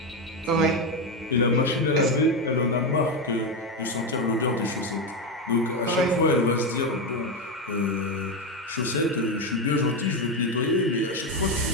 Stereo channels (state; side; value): normal; both; correlation 0.11